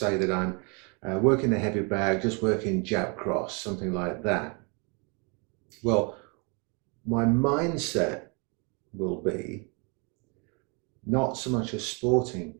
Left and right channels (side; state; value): left; quieter; 33.7 dB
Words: that I'm working the heavy bag, just working jab cross, something like that. Well, my mindset will be not so much a sporting